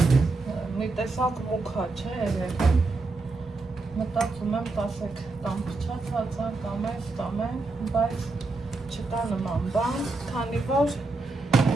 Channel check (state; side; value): quieter; left; 3.5 dB